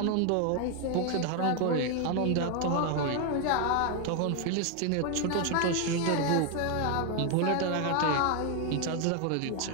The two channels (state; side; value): different; both; correlation 0.01